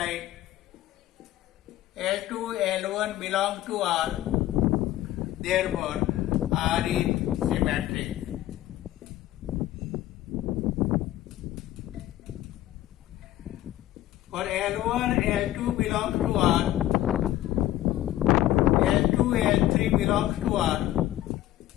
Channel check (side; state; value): right; quieter; 14.3 dB